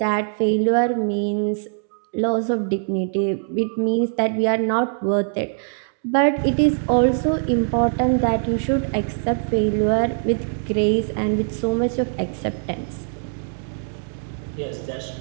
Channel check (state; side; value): silent; left; 64 dB below the other